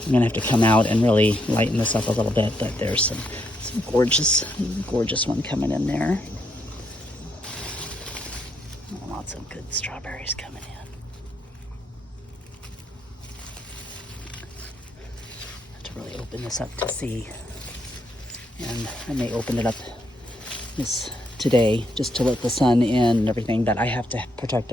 gonna have to come out and really lighten this up a little bit, but there's some gorgeous one coming in there. Lots of good strawberries coming in. Really open this up to see, and I may open it up today just to let the sun in and everything, but I have to protect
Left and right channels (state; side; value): normal; both; correlation 0.77